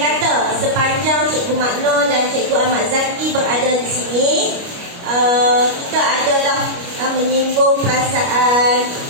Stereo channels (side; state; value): left; late; 29 ms